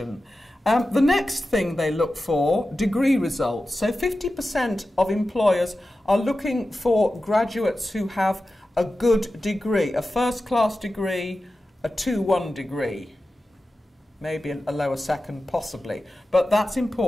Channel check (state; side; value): normal; both; correlation 0.93